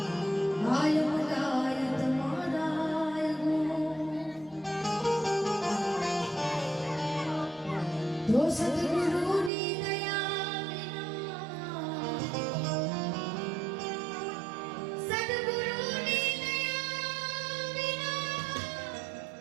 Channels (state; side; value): drops out; left; at 9.5 s